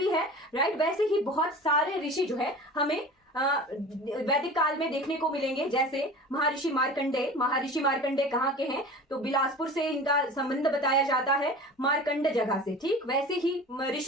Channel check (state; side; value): normal; both; correlation 0.37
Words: है। राइट, वैसे ही बहुत सारे ऋषि जो है हमें वैदिक काल में देखने को मिलेंगे, जैसे महर्षि मार्कंडेय। महर्षि मार्कंडेय कहाँ के हैं? तो बिलासपुर से इनका संबंध बताया जाता है, मार्कंड जगह से। ठीक, वैसे ही